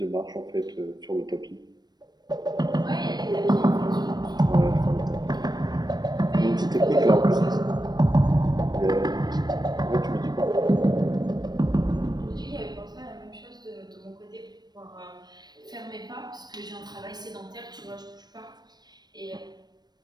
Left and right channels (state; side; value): late; left; 0.20 ms